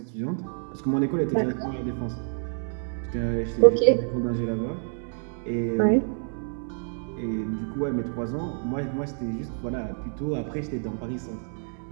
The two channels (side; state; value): left; silent; 60 dB below the other